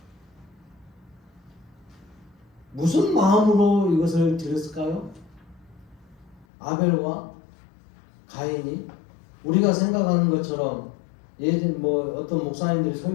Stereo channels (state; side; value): drops out; right; at 6.5 s